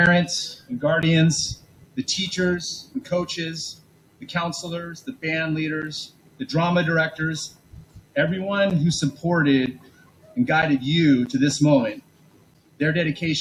and guardians, the teachers and coaches, the counselors, the band leaders, the drama directors, everyone who supported and guided you to this moment. Their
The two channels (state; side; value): identical; both; correlation 1.00